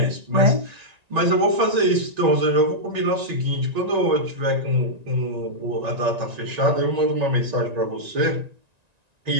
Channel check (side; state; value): left; late; 1.9 ms